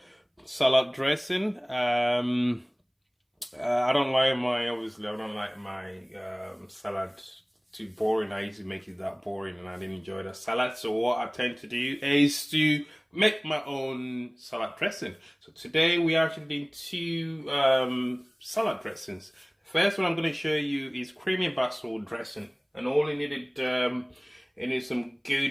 salad dressing. I don't like my obviously I don't like my salad too boring. I used to make it that boring, and I didn't enjoy the salad. So what I tend to do is to make my own salad dressing. So today we are actually doing two salad dressings. The first one I'm going to show you is creamy basil dressing, and all you needed you need some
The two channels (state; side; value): identical; both; correlation 1.00